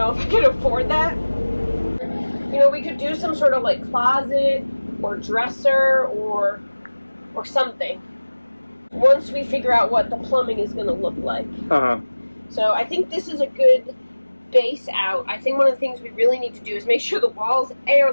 if I can afford that. You know, we could do some sort of like closet or dresser or something once we figure out what the plumbing is going to look like. So I think this is a good base out. I think one of the things we really need to do is make sure the walls A are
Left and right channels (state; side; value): inverted; both; correlation -1.00